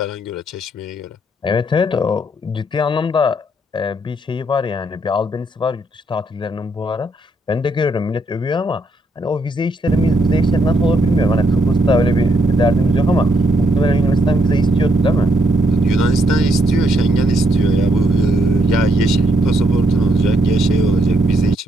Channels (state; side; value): normal; both; correlation 0.75